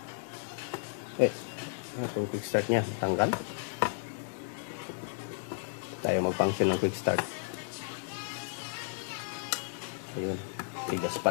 Wait. Itong quick start niya, tanggal. Tayo mag-function ng quick start. Ayun, tigas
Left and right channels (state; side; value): silent; right; digital silence